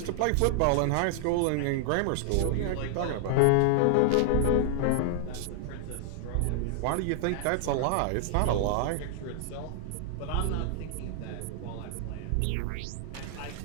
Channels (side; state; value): both; different; correlation -0.01